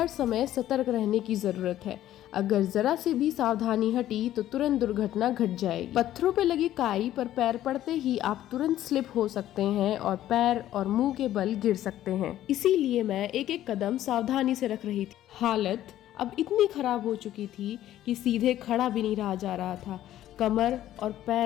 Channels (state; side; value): quieter; right; 12.9 dB